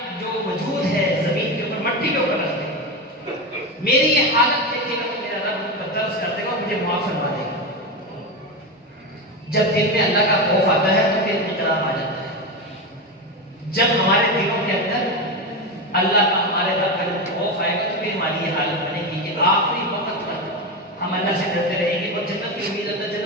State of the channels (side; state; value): both; normal; correlation 0.16